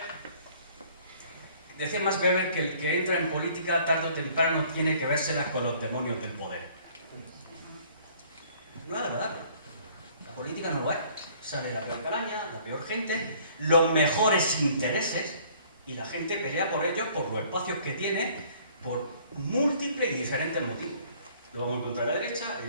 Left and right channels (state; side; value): inverted; both; correlation -0.56